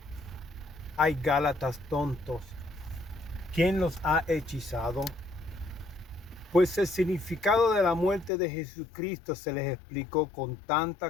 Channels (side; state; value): right; drops out; at 8.3 s